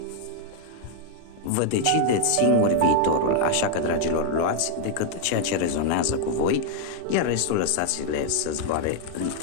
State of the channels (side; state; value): both; different; correlation 0.00